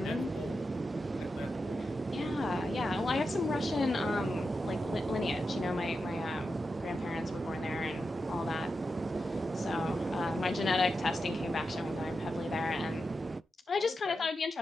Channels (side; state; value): both; normal; correlation 0.89